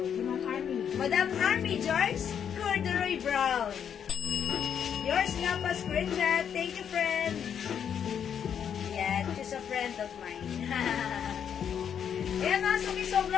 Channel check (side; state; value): right; quieter; 8.2 dB